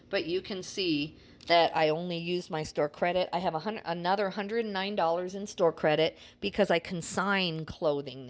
But you can see that I only used my store credit. I have another $109 in store credit because I consign clothing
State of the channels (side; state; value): both; identical; correlation 1.00